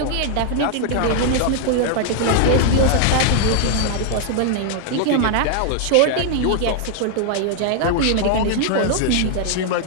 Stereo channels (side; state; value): both; different; correlation 0.00